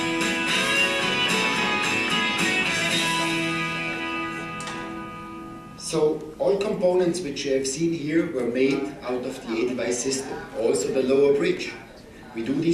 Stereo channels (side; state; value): both; identical; correlation 1.00